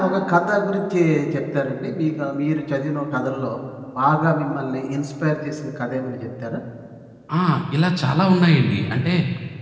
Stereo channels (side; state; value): both; identical; correlation 1.00